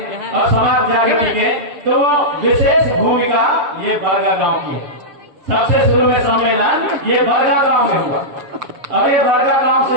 और समाज जागृति के, तो विशेष भूमिका ये बरगा गांव की है। सबसे शुरू में सम्मेलन ये बरगा गांव में हुआ और ये बरगा गांव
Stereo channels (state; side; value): late; left; 7.1 ms